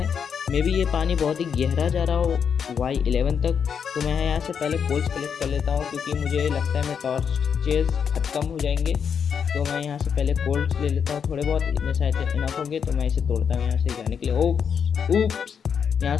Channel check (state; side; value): quieter; right; 7.1 dB